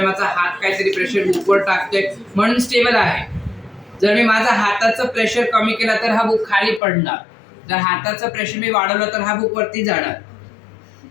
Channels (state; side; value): drops out; right; at 6.8 s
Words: माझा हात काहीतरी प्रेशर बुकवर टाकतोय म्हणून स्टेबल आहे। जर मी माझा हाताचं प्रेशर कमी केला तर हा बुक खाली पडणार, जर हाताचं प्रेशर मी वाढवलं तर हा बुक वरती जाणार।